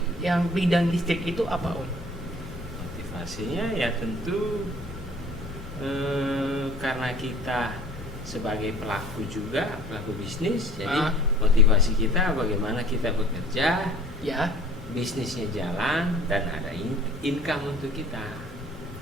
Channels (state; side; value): normal; both; correlation 0.48